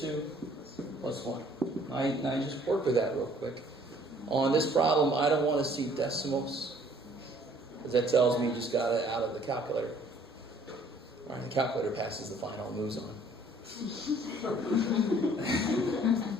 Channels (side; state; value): both; normal; correlation 0.58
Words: plus 1. Now you just work with that real quick. On this problem, I don't want to see decimals, because that tells me you just got it out of the calculator. All right, the calculator passes the final, moves on.